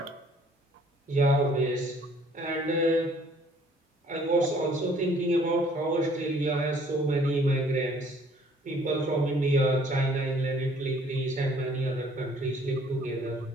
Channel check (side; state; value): both; normal; correlation 0.58